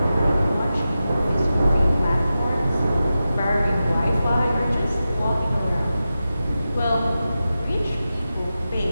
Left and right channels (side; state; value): both; inverted; correlation -0.92